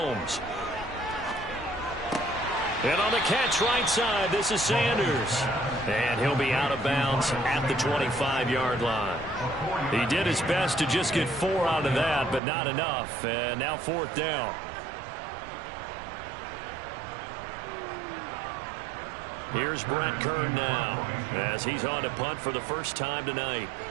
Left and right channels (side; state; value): left; drops out; at 12.4 s